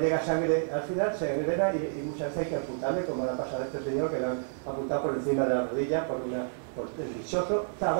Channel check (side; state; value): left; silent; 58 dB below the other